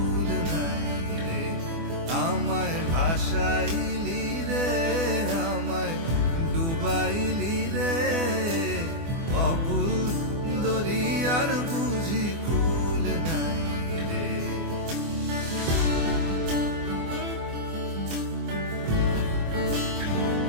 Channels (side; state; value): left; late; 24 ms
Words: নাই রে। আমায় ভাসাইলি রে, আমায় ডুবাইলি রে, অকুল দরিয়ার বুঝি কুল নাই রে।